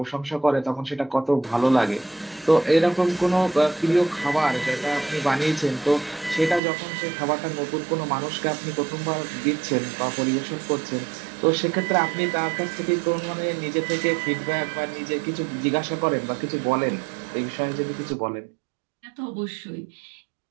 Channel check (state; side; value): drops out; left; at 6.6 s